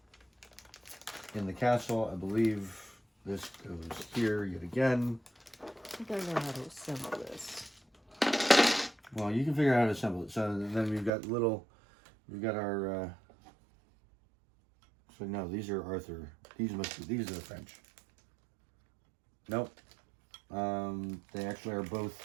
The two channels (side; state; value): left; drops out; at 11.1 s